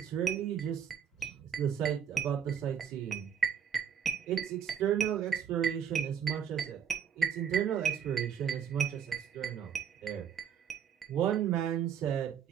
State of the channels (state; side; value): quieter; left; 8.0 dB